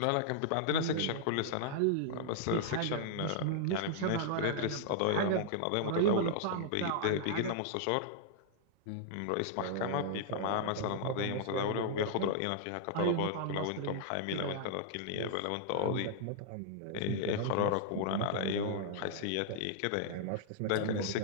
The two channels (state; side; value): different; both; correlation -0.01